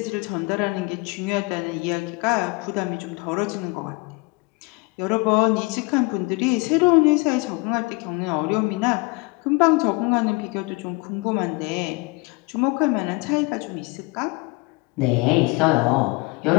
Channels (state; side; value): quieter; right; 27.0 dB